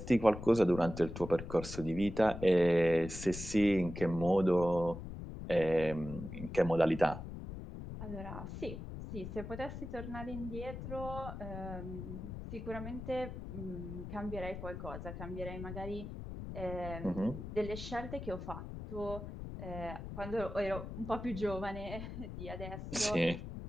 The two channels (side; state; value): left; noise; rumble, 9 dB below the sound